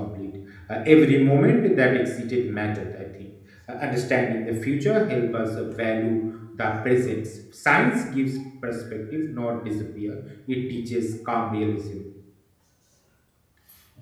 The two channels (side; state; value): both; identical; correlation 1.00